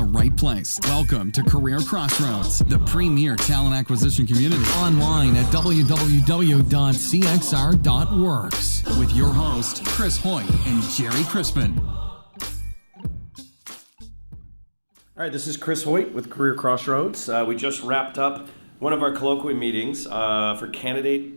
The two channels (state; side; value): inverted; both; correlation -1.00